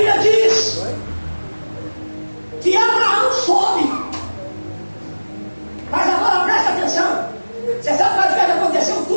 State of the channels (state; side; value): inverted; both; correlation -1.00